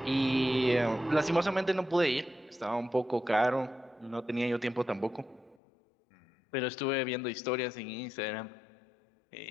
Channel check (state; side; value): drops out; right; at 5.6 s